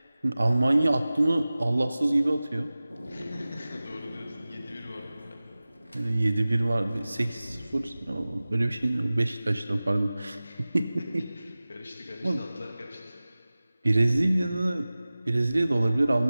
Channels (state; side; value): inverted; both; correlation -0.97